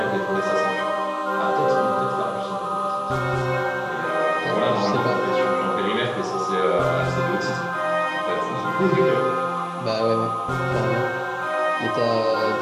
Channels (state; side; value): identical; both; correlation 1.00